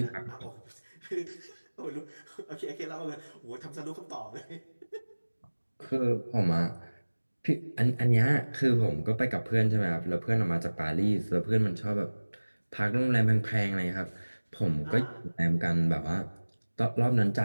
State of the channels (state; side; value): inverted; both; correlation -1.00